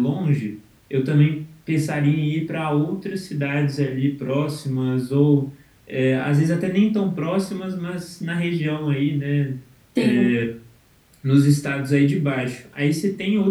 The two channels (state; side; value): identical; both; correlation 1.00